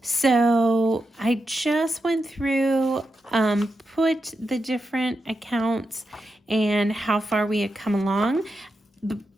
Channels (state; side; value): normal; both; correlation 0.87